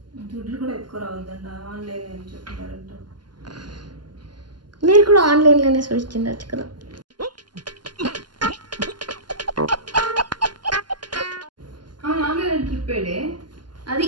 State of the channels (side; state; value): left; late; 0.71 ms